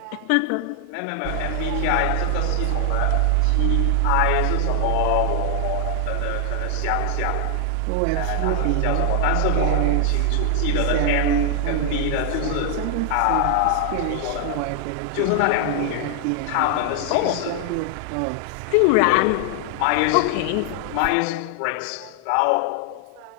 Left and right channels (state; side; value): different; both; correlation 0.00